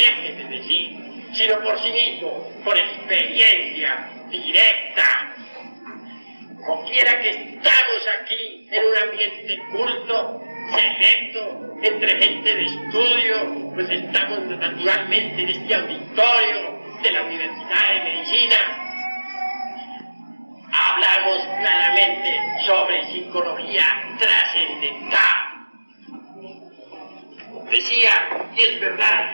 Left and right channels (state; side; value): inverted; both; correlation -1.00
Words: de decir, sino por sí mismo, por experiencia directa. Como quiera que estamos aquí en un ambiente culto, selecto, entre gente de estudio, pues estamos naturalmente en este auditorio de la Universidad de Medicina. Hablamos claramente sobre psicología trascendental. Decía, y es